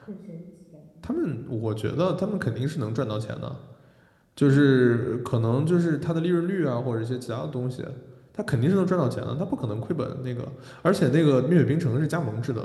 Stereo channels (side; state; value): both; identical; correlation 1.00